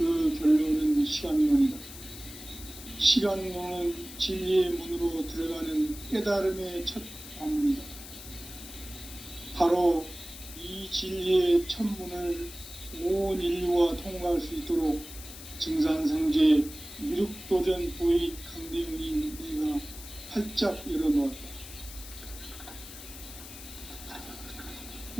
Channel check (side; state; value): left; noise; hiss, 14 dB below the sound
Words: 결론은 시간론이다. 시간론은 진리의 문으로 들어가는 깨달음의 첫 관문이다. 바로 이 진리의 첫 문을 온 인류가 통과할 수 있도록 증산성제 미륵도전 도익 강대웅인 내가 활짝 열어놓았다.